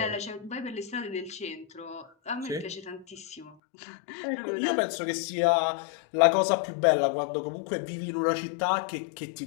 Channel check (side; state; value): right; drops out; at 3.6 s